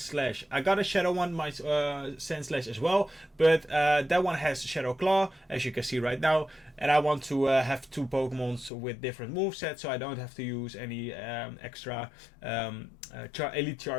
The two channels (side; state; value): right; drops out; at 8.7 s